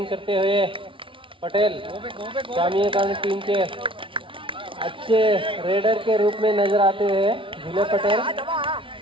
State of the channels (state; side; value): late; left; 0.25 ms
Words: करते हुए पटेल स्वामी विवेकानंद टीम के अच्छे रेडर के रूप में नजर आते हैं जुमले पटेल.